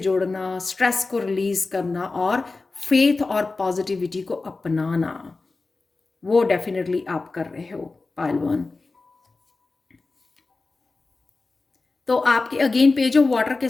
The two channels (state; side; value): quieter; right; 3.7 dB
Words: स्ट्रेस को रिलीज करना और फेथ और पॉजिटिविटी को अपनाना, वो डेफिनेटली आप कर रहे हो पाइल 1। तो आपके अगेन पेज ऑफ वाटर के